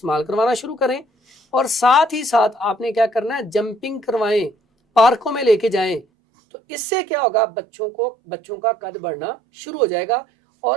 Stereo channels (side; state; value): left; drops out; at 6.1 s